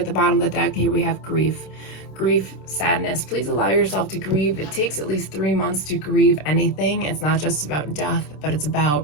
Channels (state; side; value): late; right; 27 ms